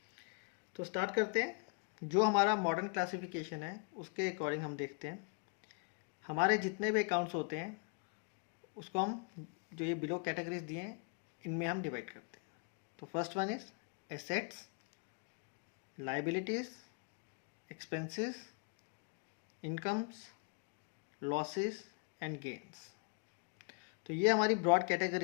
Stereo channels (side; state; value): right; quieter; 37.9 dB